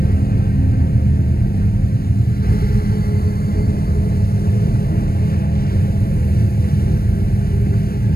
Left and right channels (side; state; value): right; late; 0.44 ms